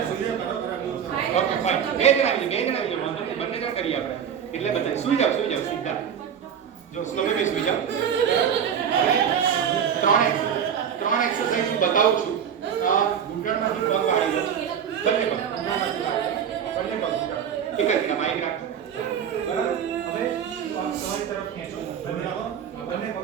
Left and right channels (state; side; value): quieter; left; 8.2 dB